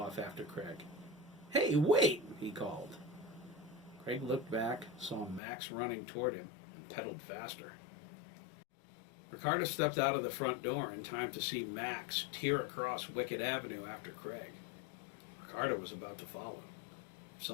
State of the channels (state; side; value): drops out; right; at 5.4 s